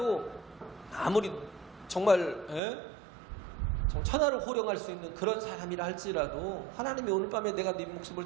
아무리 정말 천하를 호령할 수 있는 그런 사람이라 할지라도 하나님이 오늘 밤에 내가 네 목숨을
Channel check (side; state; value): left; drops out; at 2.6 s